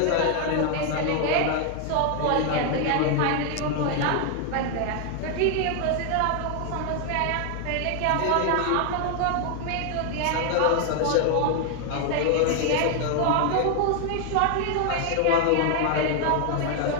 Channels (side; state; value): both; different; correlation 0.00